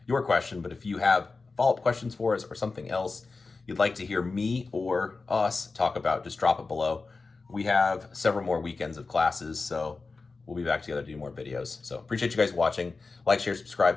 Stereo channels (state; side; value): quieter; right; 4.0 dB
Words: your question. But if you have follow-up questions for us or something else you'd like to hear me or us talk about, just drop it below. We have several more weekends of classes, so we'll be back together to do more videos. So appreciate you guys watching. Like, share,